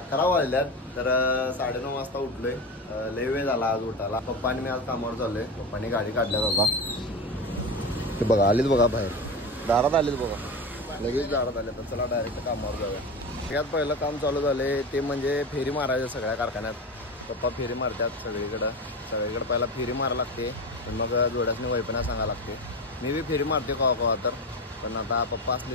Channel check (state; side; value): normal; both; correlation 0.24